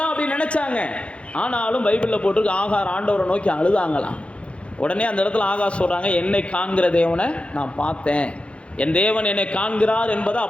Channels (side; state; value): right; late; 0.060 ms